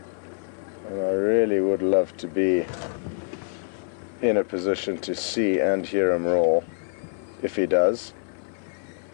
And I really would love to be in a position to see and hear him roar, if he does.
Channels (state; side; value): silent; right; 61 dB below the other